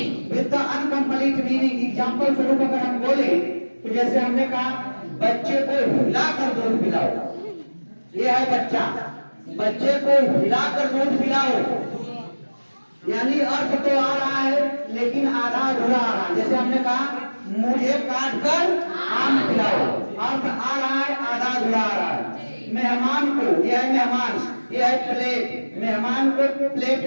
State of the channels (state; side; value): inverted; both; correlation -1.00